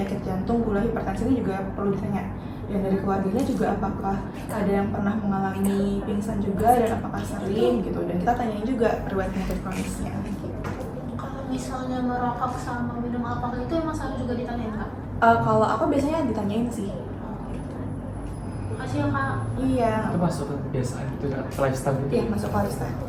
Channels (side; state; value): both; identical; correlation 1.00